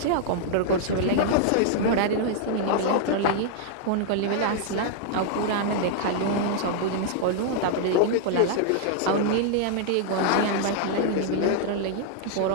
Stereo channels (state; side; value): different; both; correlation -0.01